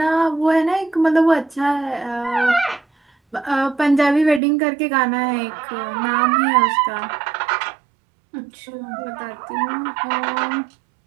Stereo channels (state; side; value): drops out; left; at 4.4 s